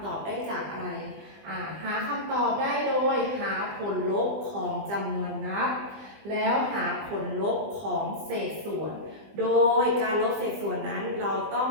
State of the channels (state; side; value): late; left; 20 ms